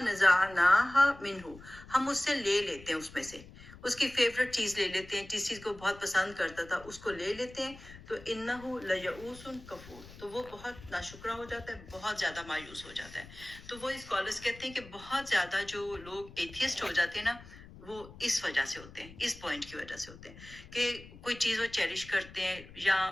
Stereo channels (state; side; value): noise; left; rumble, 18 dB below the sound